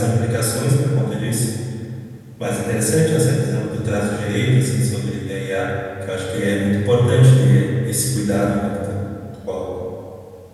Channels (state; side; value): identical; both; correlation 1.00